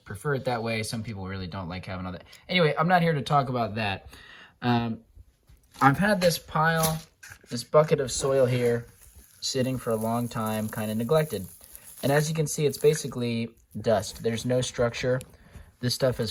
prefer it that way. Some people really don't like having all that. Anyway, I'm not here to talk about that. Um, I've had this bucket of soil here sitting for a long time, kind of neglected. And as you can see, it's basically dust. There's no structure. This stuff is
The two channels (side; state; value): both; identical; correlation 1.00